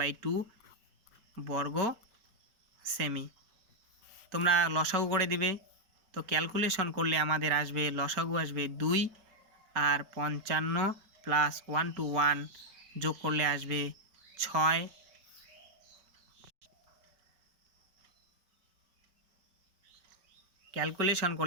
বর্গ সেমি। তোমরা লসাগু করে দিবে। তো ক্যালকুলেশন করলে আমাদের আসবে, লসাগু আসবে 2 আর 55 প্লাস 1/1 যোগ করলে আসবে 6। ক্যালকুলেশন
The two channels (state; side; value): late; left; 5.1 ms